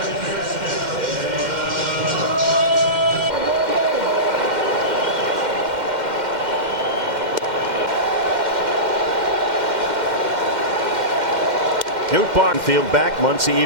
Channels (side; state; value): left; late; 2.1 ms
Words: Newt Barnfield back. Muncy